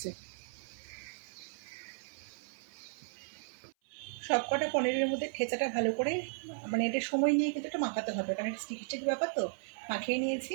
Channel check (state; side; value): silent; left; 54 dB below the other